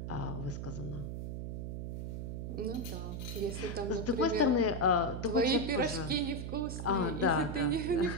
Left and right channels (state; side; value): noise; right; hum, 5 dB below the sound